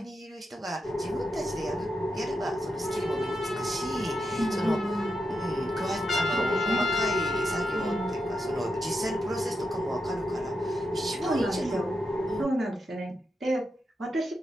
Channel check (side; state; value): both; normal; correlation 0.85